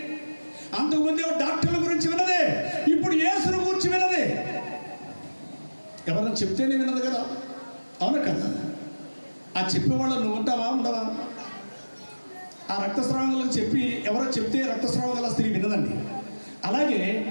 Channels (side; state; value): both; inverted; correlation -1.00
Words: అంతకుముందు డాక్టర్ల గురించి విన్నదే, ఇప్పుడు యేసును గురించి విన్నదే. ఎవరైనా చెప్తేనే విన్నది కదా, అవునా కదా? ఆ చెప్పేవాళ్ళు నువ్వు ఉంటావా, ఉండవా? ఆ రక్తస్రావం చెప్పి ఎవరో చెప్తే రక్తస్రావం గల స్త్రీ విన్నదండి. అలాగే